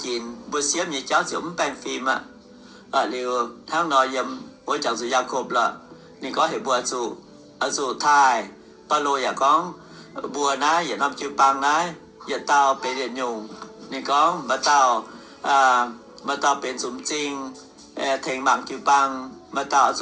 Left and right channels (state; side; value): identical; both; correlation 1.00